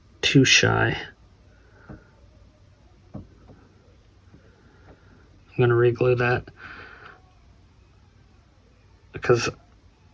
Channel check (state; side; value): identical; both; correlation 1.00